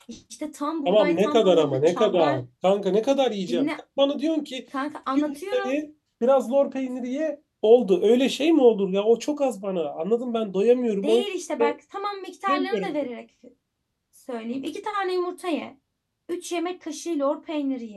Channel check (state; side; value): identical; both; correlation 1.00